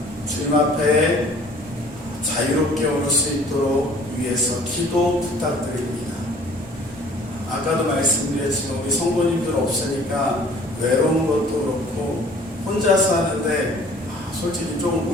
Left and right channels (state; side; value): normal; both; correlation 0.52